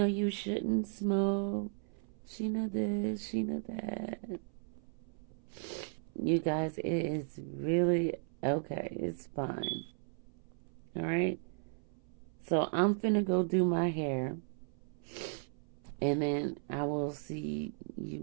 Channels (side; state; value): left; silent; 54 dB below the other